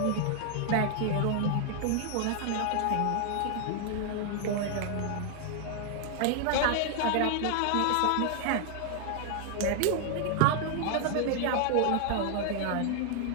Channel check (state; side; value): different; both; correlation 0.00